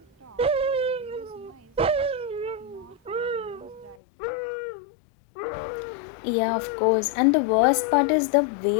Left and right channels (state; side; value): drops out; right; at 4.0 s